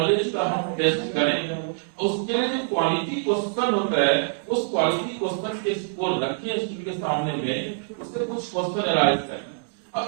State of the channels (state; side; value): silent; left; digital silence